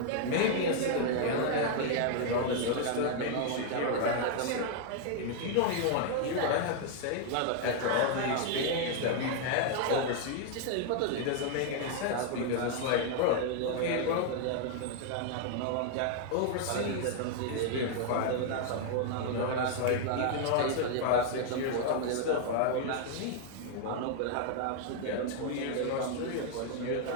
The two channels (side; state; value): both; different; correlation 0.00